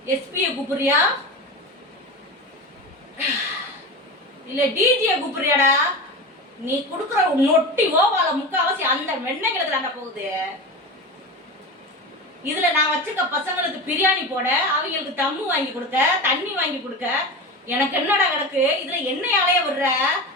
எஸ்பியை கூப்பிடுறியா இல்ல டிஜியை கூப்பிடுறியாடா? நீ கொடுக்குற நொட்டி ஓவால முக்காவாசி அந்த வெண்ணெய்களுக்கு தாண்டா போகுது. இதுல நான் வச்சுக்க பசங்களுக்கு பிரியாணி போட, அவங்களுக்கு தம்மு வாங்கி கொடுக்க, தண்ணி வாங்கி கொடுக்க, எனக்கு என்னடா கிடக்கு? இதுல என்னையாலைய விடுற?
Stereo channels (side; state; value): both; normal; correlation 0.26